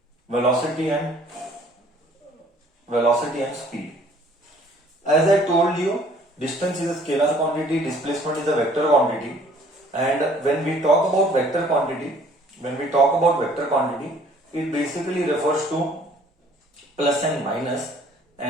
velocity and speed. As I told you, distance is a scalar quantity, displacement is a vector quantity, and when we talk about vector quantity, it basically refers to plus and minus,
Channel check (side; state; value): both; normal; correlation 0.56